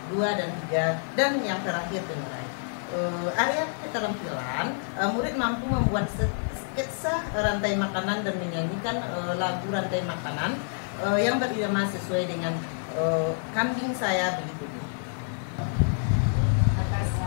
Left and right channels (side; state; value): right; silent; digital silence